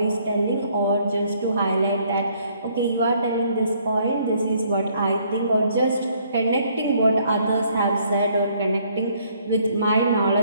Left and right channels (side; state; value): both; inverted; correlation -0.65